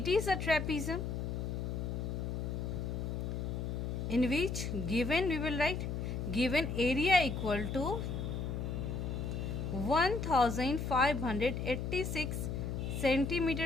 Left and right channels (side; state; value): left; noise; hum, 3 dB below the sound